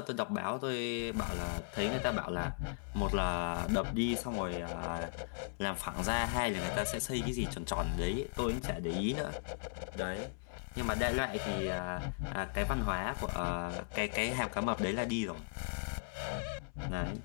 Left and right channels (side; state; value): right; silent; 53 dB below the other